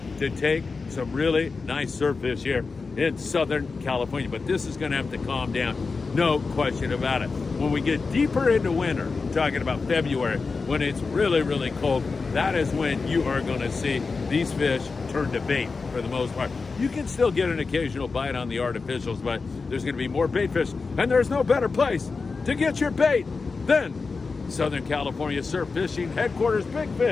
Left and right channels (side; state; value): right; quieter; 4.4 dB